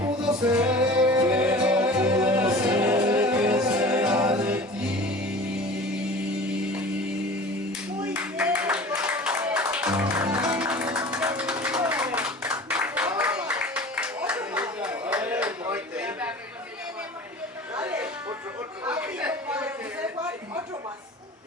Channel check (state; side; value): normal; both; correlation 0.40